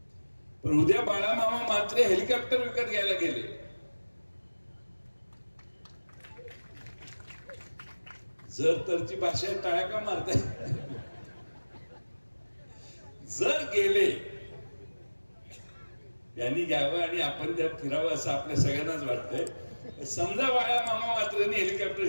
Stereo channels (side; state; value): both; inverted; correlation -1.00